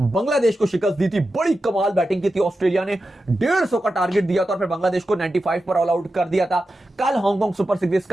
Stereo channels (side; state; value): both; normal; correlation 0.91